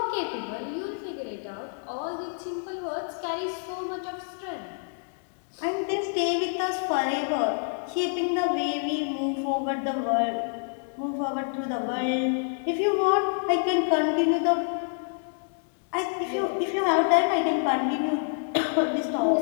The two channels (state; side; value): silent; right; 60 dB below the other